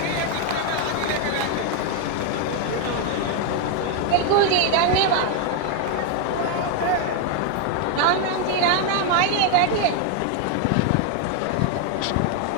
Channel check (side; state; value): both; different; correlation 0.01